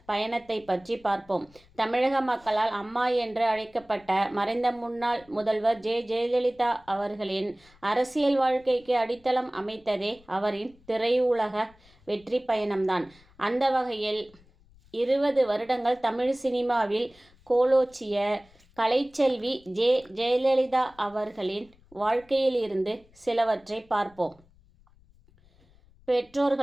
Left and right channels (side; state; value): left; noise; rumble, 29 dB below the sound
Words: பயணத்தை பற்றி பார்ப்போம். தமிழக மக்களால் அம்மா என்று அழைக்கப்பட்ட மறைந்த முன்னாள் முதல்வர் ஜெயலலிதா அவர்களின் அரசியல் வாழ்க்கைக்கு அடித்தளம் அமைத்ததே அவரின் திரையுலக வெற்றி பயணம்தான். அந்த வகையில் 20 வருடங்கள் தமிழ் சினிமாவில் கோலோச்சிய கலைச்செல்வி ஜெயலலிதா அவர்களின் வாழ்க்கையில் இருந்து சிலவற்றை பார்ப்போம்.